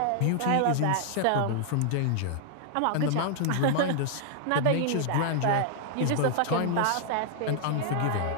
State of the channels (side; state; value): both; different; correlation -0.01